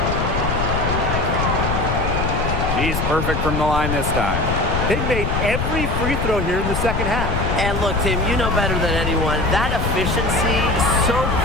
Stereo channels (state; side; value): noise; left; rumble, 1 dB below the sound